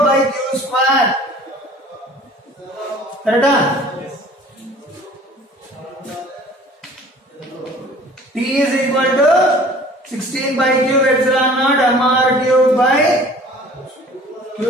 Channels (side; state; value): both; normal; correlation 0.49